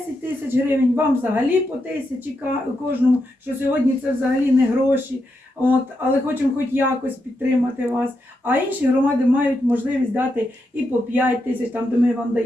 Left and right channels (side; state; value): both; normal; correlation 0.84